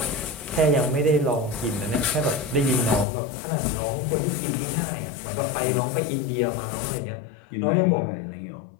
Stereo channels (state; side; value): drops out; right; at 3.1 s